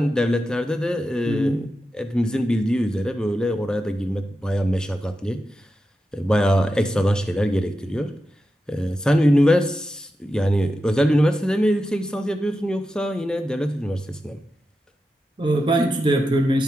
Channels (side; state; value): both; normal; correlation 0.90